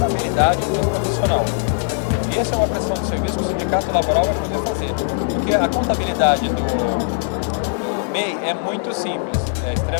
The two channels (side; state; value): right; silent; 59 dB below the other